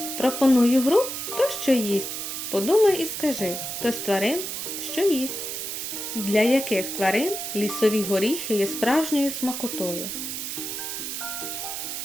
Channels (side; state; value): right; noise; hiss, 5 dB below the sound